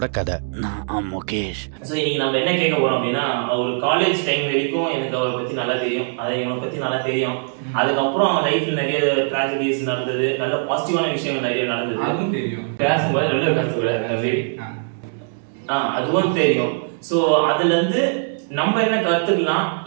கதை. நான் முகேஷ். ஸோ இன்னைக்கு நம்ம என்ன கேட்க போறோம் அப்படின்னா, ஒரு காலேஜ் டைம் வரைக்கும் எனக்கு அவரை பத்தி நல்லா தெரியும், அதை இவனை பத்தி நல்லா தெரியும். அதுக்கப்புறம் அவன் லைஃப்ல நிறைய ட்ராஜடிஸ் நடந்தது, நல்ல பாசிட்டிவான விஷயங்கள் நிறைய நடந்தது. அதுவும் தெரியும். பேசும்போது நல்ல பேசக்கூடாது, அதுவும் தெரியும். ஸோ அதுல இருந்து நம்ம என்ன கத்துக்கலாம்,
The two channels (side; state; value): left; silent; digital silence